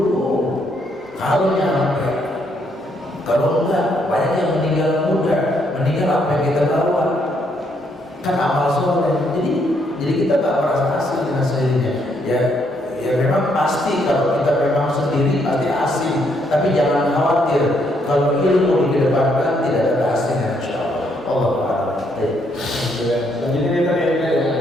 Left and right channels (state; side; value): normal; both; correlation 0.73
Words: Kalau nyampe, kalau enggak banyak yang meninggal muda. Meninggal apa yang kita bawa? Kan amal soleh. Jadi kita gak merasa asing dengan sendirinya. Ya memang pasti kalau kita memang sendiri pasti asing. Tapi jangan khawatir, kalau ilmu dikedepankan tidak ada keasingan insyaallah. Allah Ta'ala. Selanjutnya tadi ada